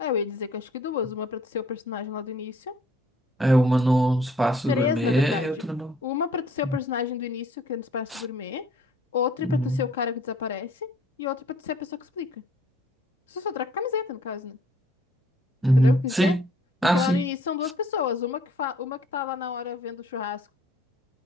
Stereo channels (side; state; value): both; normal; correlation 0.59